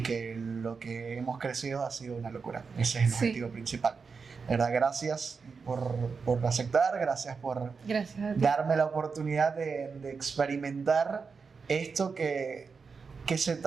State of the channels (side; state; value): left; quieter; 5.2 dB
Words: que lo que hemos crecido ha sido una locura. Ese es el Sí. objetivo principal. De verdad, gracias por aceptar, gracias por Gracias a ti. darme la oportunidad de experimentar esto que se